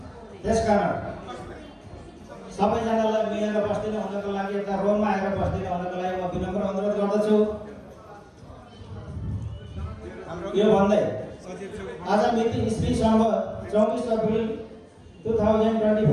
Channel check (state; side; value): identical; both; correlation 1.00